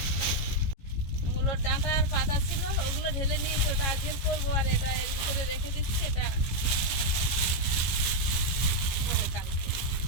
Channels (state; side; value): late; right; 15 ms